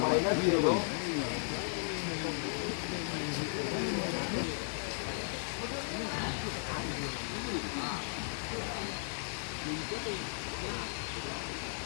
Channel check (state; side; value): silent; right; 54 dB below the other